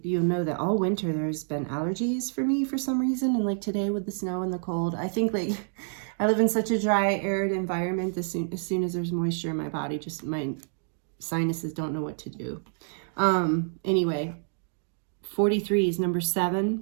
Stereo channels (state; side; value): silent; left; digital silence